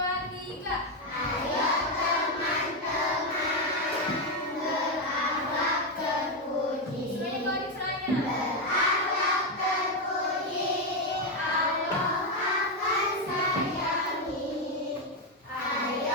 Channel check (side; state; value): both; normal; correlation 0.06